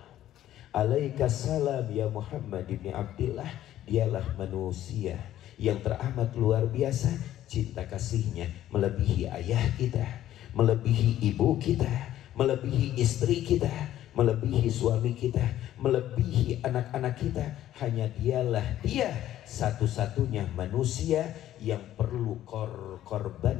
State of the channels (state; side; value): quieter; right; 12.7 dB